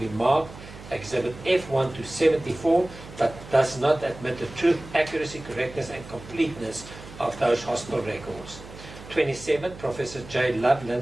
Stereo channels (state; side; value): noise; right; hum, 16 dB below the sound